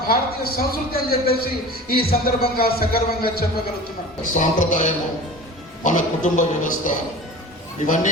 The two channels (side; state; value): both; normal; correlation 0.37